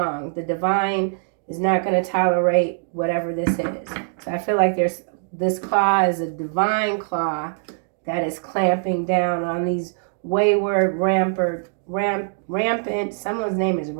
The divine is not going to tolerate whatever this is. So I feel like this claw is a divine claw that is clamping down on these wayward, rampant, someone's name is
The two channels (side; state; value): left; silent; digital silence